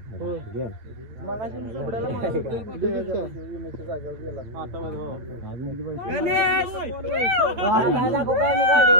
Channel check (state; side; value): late; left; 8.7 ms